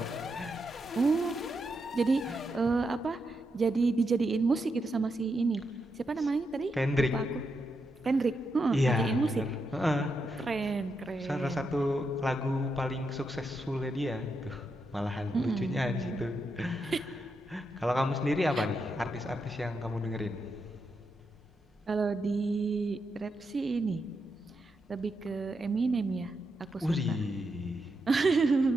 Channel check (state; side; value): normal; both; correlation 0.84